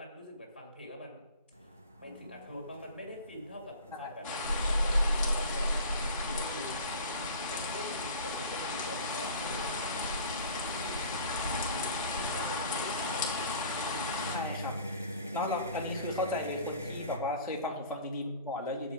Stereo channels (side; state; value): both; inverted; correlation -0.42